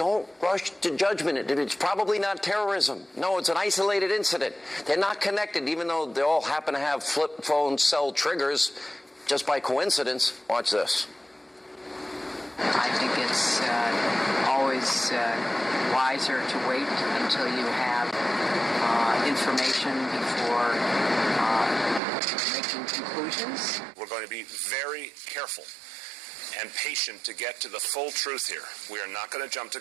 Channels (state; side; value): drops out; left; at 22.0 s